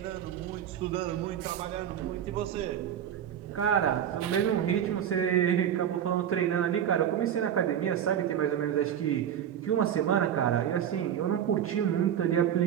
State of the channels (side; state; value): left; quieter; 9.7 dB